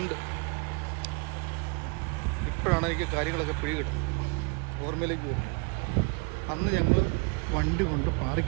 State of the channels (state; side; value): quieter; left; 31.2 dB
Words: ഇപ്പോഴാണ് എനിക്ക് കാര്യങ്ങളൊക്കെ പിടികിട്ടുന്നത്, ഓർമ്മയിലേക്ക് വരുന്നത്. അന്ന് ഞങ്ങൾ വണ്ടി കൊണ്ട്